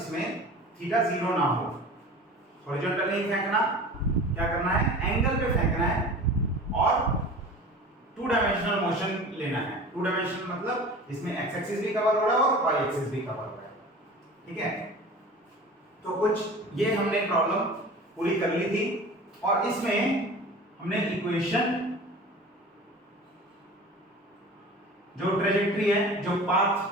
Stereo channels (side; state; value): both; normal; correlation 0.38